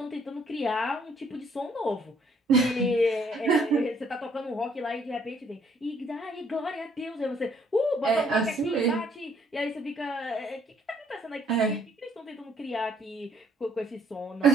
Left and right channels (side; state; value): both; normal; correlation 0.66